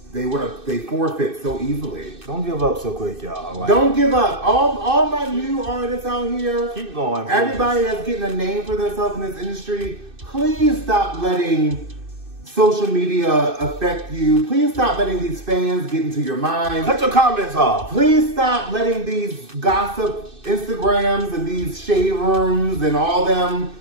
they forfeit so easily. Don't give up so quick, y'all. Like, don't give up. All my new artists out here. Keep going. Everybody that's getting a name for themselves in this industry, please stop letting social media affect you. Please stop letting these fans get into your mind. Cut your comments off. Please stop letting these gossip Instagrams and these shade rooms and all them.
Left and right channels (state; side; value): late; left; 2.6 ms